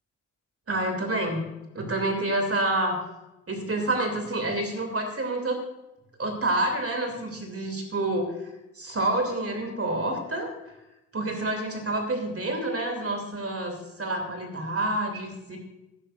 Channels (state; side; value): normal; both; correlation -0.12